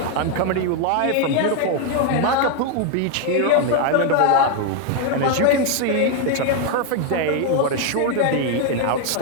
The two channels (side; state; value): both; different; correlation 0.01